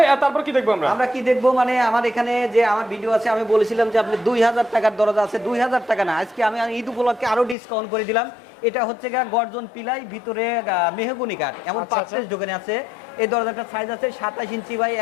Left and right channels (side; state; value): right; drops out; at 7.6 s